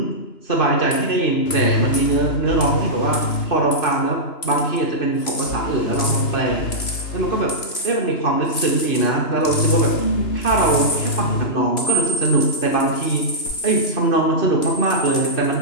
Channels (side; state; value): right; late; 3.0 ms